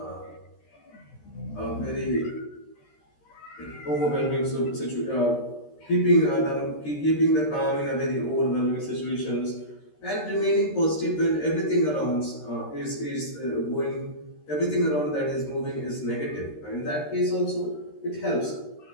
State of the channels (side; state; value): right; late; 13 ms